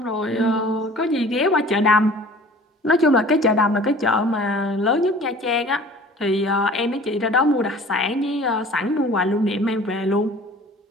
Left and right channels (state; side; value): normal; both; correlation 0.46